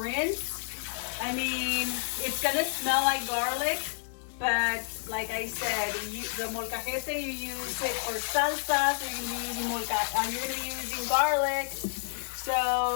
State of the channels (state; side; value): silent; right; digital silence